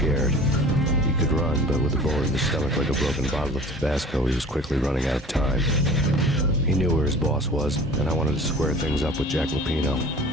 He could run, but with a bullet in his stomach like a broken bottle of Tabasco, he was quickly running out of time. He knew where his boss was, and I wanted to square things up with Jack Lupino.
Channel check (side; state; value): both; normal; correlation 0.43